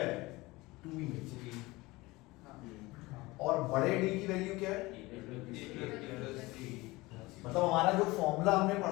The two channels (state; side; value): quieter; right; 21.4 dB